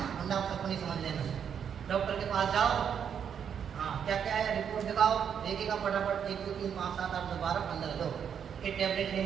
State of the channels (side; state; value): left; quieter; 7.9 dB